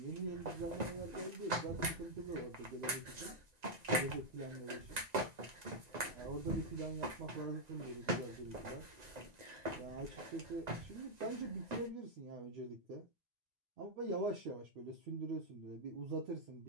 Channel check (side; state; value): left; late; 1.9 ms